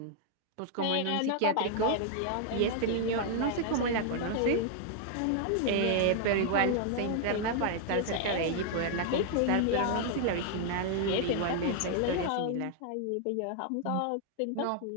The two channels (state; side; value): different; both; correlation 0.00